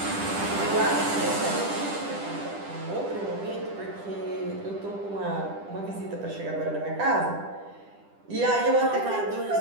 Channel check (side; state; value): left; late; 10 ms